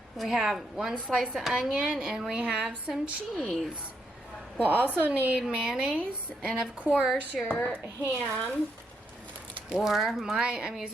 We have 1 slice of onion and we have some cheese. We'll also need mayonnaise and of course your ham, or I'm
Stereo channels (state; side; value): normal; both; correlation 0.78